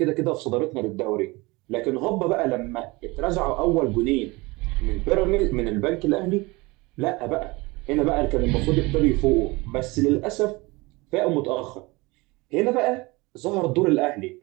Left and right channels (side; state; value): left; quieter; 23.8 dB